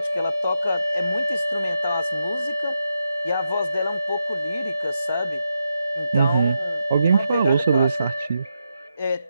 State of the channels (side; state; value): both; inverted; correlation -0.85